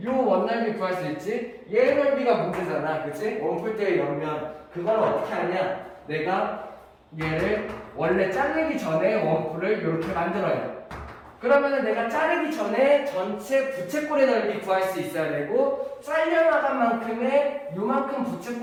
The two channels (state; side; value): identical; both; correlation 1.00